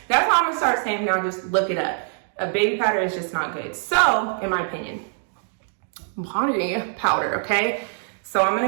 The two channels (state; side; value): silent; left; 63 dB below the other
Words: That's all I'm gonna start saying now. Just look it up. Baby powder is just not good. So, in my opinion, body powder, okay? So I'm